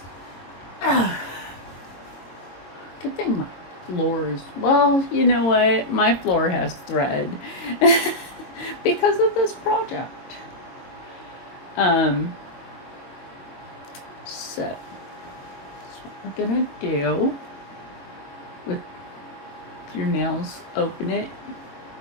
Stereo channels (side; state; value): right; late; 22 ms